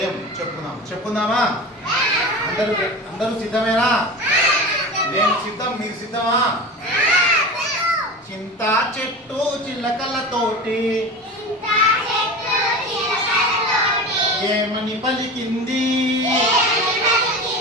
చెప్పుకుందామా? అందరూ సిద్ధమేనా? నేను సిద్ధం, మీరు సిద్ధమా? చింతా చెట్టు చిలకలతోటి ఏమని పలికింది?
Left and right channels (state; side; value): normal; both; correlation 0.31